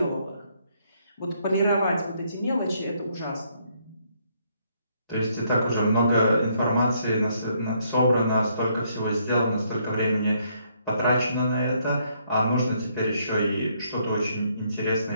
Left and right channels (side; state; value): both; inverted; correlation -0.71